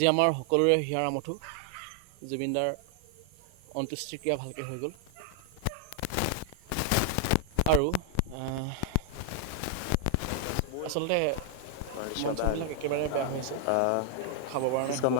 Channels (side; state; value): both; different; correlation 0.00